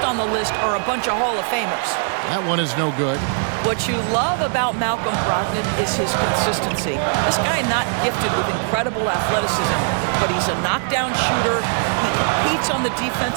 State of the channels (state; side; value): silent; left; 65 dB below the other